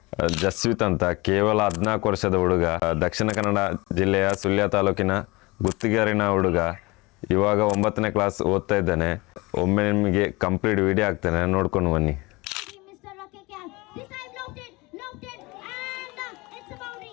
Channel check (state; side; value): quieter; right; 23.7 dB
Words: ಜಸ್ವಿತ್ ಅಂತ. ಕೇವಲ 14 ವರ್ಷದ ಹುಡುಗ. ದಕ್ಷಿಣ ಕನ್ನಡ ಜಿಲ್ಲೆಯ ಸುಳ್ಯ ತಾಲೂಕಿನ ಗುತ್ತಿಗೆರಿನ ಹುಡುಗ. ಇವಾಗ 9ನೇ ಕ್ಲಾಸ್ ಓದ್ತಾ ಇದ್ದಾನೆ. ಒಮ್ಮೆ ನಿಮಗೆ ಕಂಪ್ಲೀಟ್ ವಿಡಿಯೋ ಹಾಕ್ತೇನೆ, ನೋಡ್ಕೊಂಡು ಬನ್ನಿ.